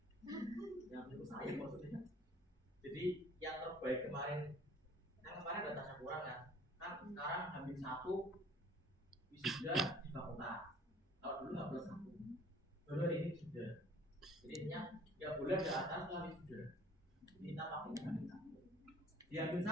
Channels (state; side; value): normal; both; correlation 0.52